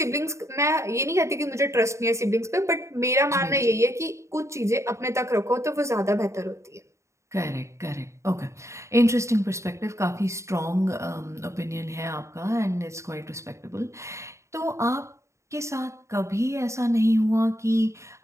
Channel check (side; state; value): left; late; 0.14 ms